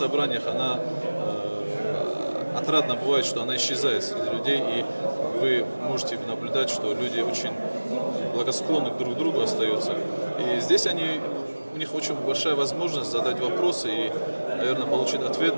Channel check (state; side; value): inverted; both; correlation -1.00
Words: она отрадно бывает, что она исчезает среди людей, и вы можете наблюдать, что люди очень благосклонны друг к другу остаются. И здесь у них очень большая возможность задать вопросы и, наверное, получить ответ